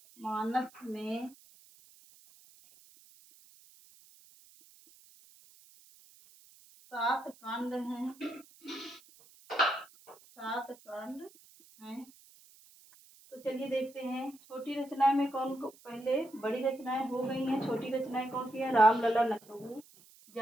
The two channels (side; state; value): right; noise; hiss, 25 dB below the sound